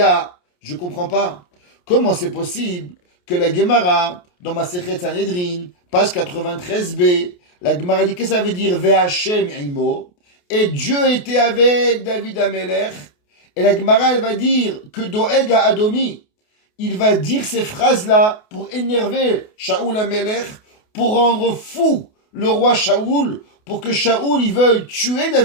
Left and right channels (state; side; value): late; right; 28 ms